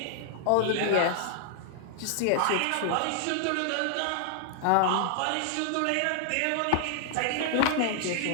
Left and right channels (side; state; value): both; different; correlation -0.01